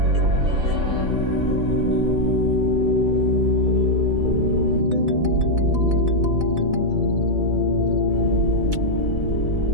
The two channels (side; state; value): left; late; 4.0 ms